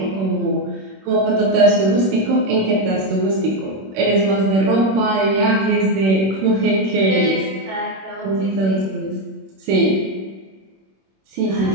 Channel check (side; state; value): left; late; 26 ms